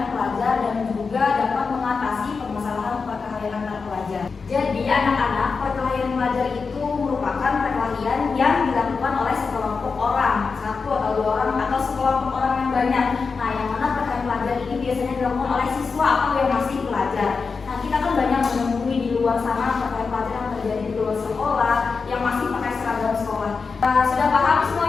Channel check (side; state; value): right; quieter; 4.9 dB